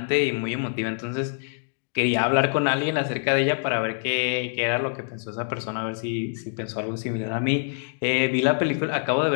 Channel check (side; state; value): right; silent; digital silence